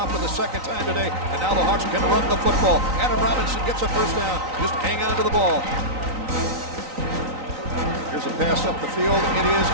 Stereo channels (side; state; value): left; late; 3.9 ms